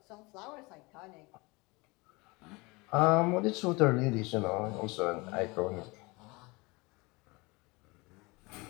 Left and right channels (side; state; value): right; quieter; 25.4 dB